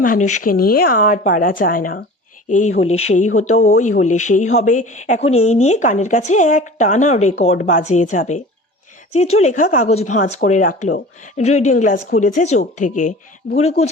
মানুষকে নিয়ে আর পারা যায় না। এই হলে সেই হতো, ওই হলে সেই হবে, এখন এই নিয়ে কানের কাছে এক টানা রেকর্ড বাজিয়ে যাবে। চিত্রলেখা কাগজ ভাঁজ করে রাখলো, রিডিং গ্লাস খুলেছে চোখ থেকে, ভুরু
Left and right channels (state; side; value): normal; both; correlation 0.40